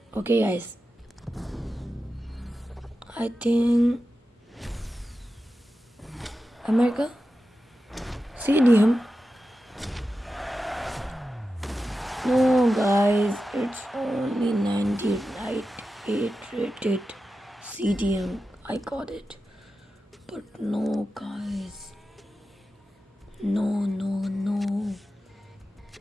Okay guys, I think America CDM. No guys, it's only 98 rated CDM. I got it, but no guys, no.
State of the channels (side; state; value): both; normal; correlation 0.92